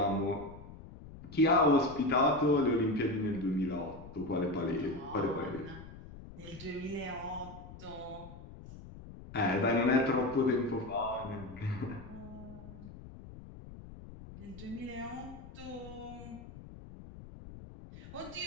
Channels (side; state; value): left; noise; rumble, 15 dB below the sound